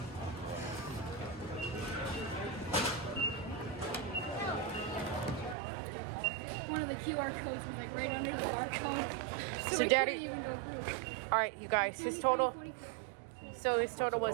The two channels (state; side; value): drops out; left; at 5.6 s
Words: One of the QR codes was like right under the barcode. So we Daddy- couldn't even go through. All right, you guys, his total. So his total